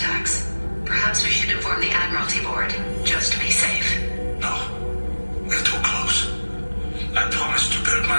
Perhaps we should inform the Admiralty Board, just to be safe. No, we're too close. I promised to build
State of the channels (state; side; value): inverted; both; correlation -1.00